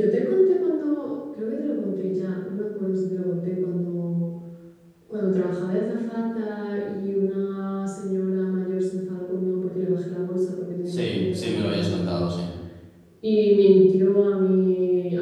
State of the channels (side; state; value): both; identical; correlation 1.00